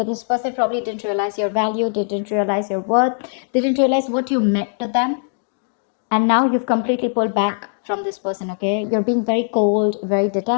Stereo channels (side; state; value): right; silent; 66 dB below the other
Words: this person probably didn't realize your value, didn't realize your worth, didn't realize what you meant to them, and now you've completely pulled back from this person. Okay, you're being very cold, very